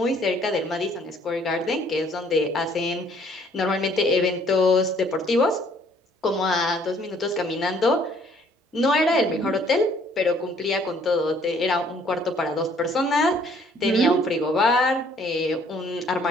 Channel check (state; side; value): normal; both; correlation 0.61